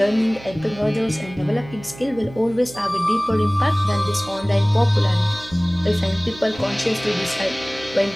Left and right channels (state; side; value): noise; right; hum, 17 dB below the sound